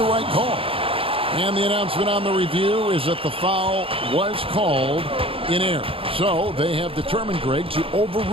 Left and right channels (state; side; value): late; left; 0.27 ms